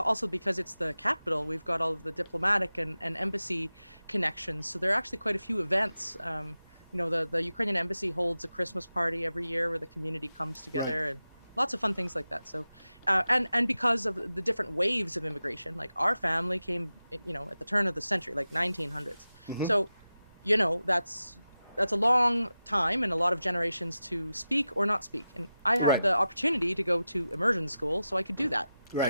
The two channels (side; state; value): both; inverted; correlation -0.93